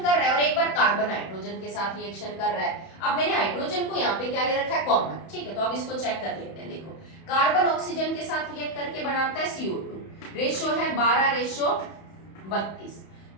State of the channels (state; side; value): late; right; 31 ms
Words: रहा है और एक बार कार्बन हाइड्रोजन के साथ रिएक्शन कर रहा है। अब मैंने हाइड्रोजन को यहाँ पे क्या ले रखा है, कॉमन, ठीक है। तो अब इसको चेक कर लेते हैं। देखो, कार्बन ऑक्सीजन के साथ रिएक्ट करके बनाता है CO2, रेशो है 12:32।